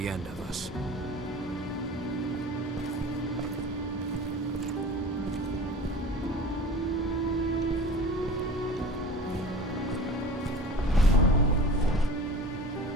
end of us.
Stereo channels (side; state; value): both; normal; correlation 0.38